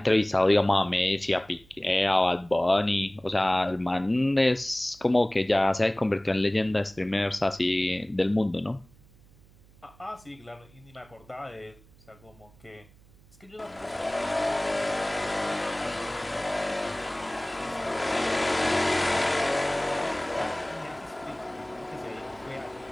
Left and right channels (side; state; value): right; noise; hum, 27 dB below the sound